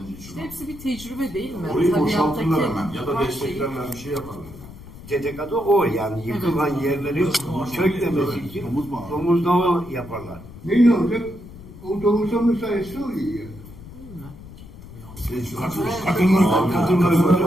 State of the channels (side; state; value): left; noise; rumble, 17 dB below the sound